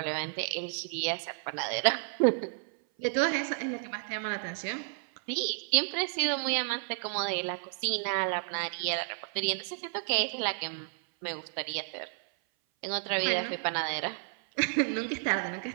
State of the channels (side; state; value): left; silent; 55 dB below the other